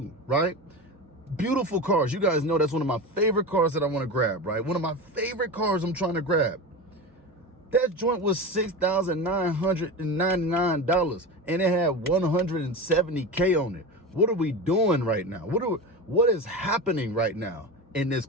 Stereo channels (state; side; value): normal; both; correlation 0.26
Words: right? Beautiful cars. You guys know that's one of my favorite cars that I want to grab, right? One of my favorite cars I'm trying to grab. That joint was $6,999 and it had 170K on it. What are we doing right now? What is happening right now in this